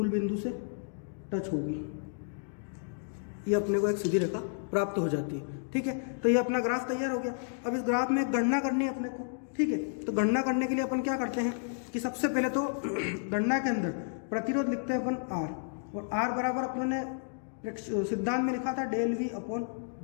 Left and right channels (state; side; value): silent; right; digital silence